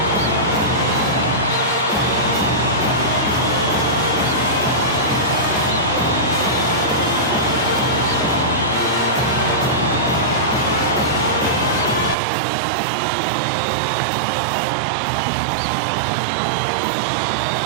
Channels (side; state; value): left; drops out; at 12.2 s